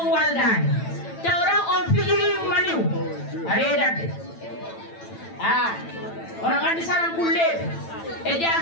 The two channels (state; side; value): late; right; 9.0 ms